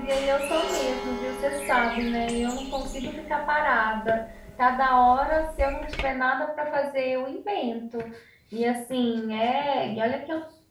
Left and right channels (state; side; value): identical; both; correlation 1.00